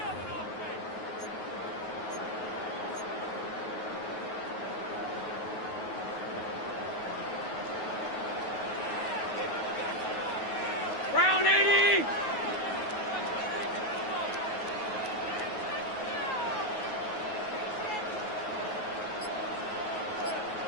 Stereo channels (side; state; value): right; late; 9.4 ms